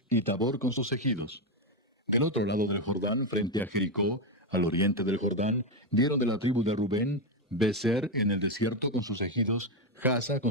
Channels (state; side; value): normal; both; correlation 0.07